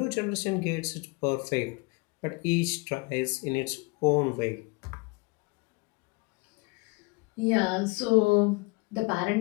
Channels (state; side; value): quieter; right; 28.1 dB